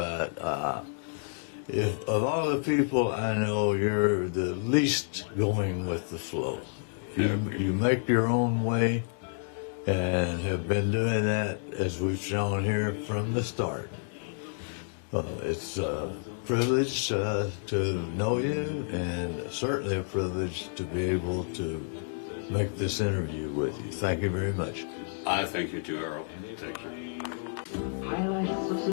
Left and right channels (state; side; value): silent; right; digital silence